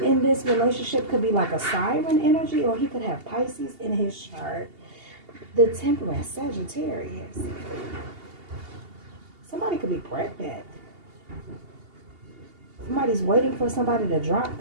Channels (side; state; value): left; late; 2.8 ms